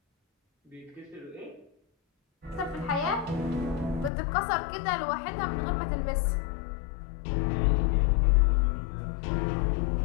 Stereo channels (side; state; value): right; drops out; at 4.1 s